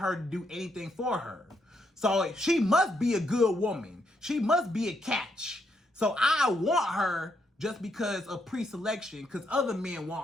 to do anything for her? So she must be a good woman. She must be a catch. So I want her just because of pre-selection, because other men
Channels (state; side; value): normal; both; correlation 0.77